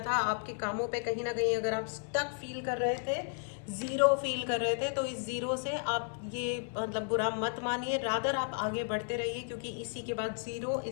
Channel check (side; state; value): right; silent; 55 dB below the other